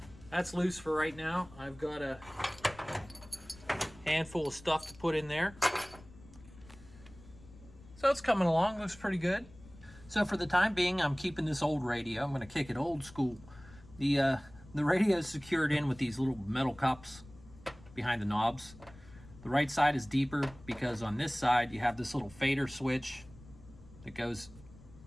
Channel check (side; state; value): left; noise; rumble, 21 dB below the sound